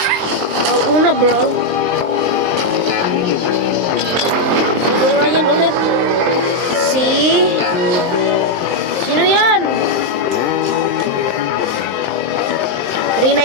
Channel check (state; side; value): late; left; 23 ms